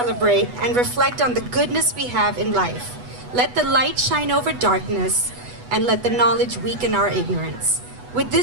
and reflect on the goodness we have in life. Let the light shine over darkness, and let the knowledge weaken our ignorance. With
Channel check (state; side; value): late; left; 8.1 ms